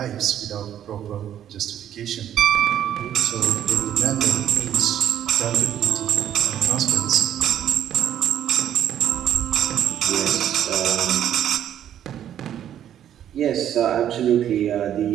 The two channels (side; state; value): left; quieter; 10.5 dB